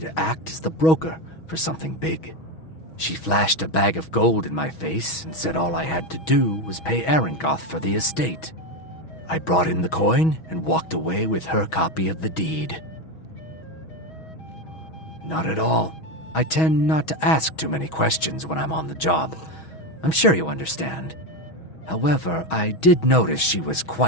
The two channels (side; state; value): right; late; 6.2 ms